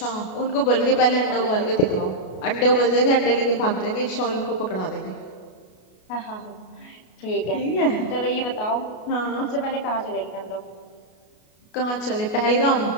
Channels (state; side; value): late; right; 33 ms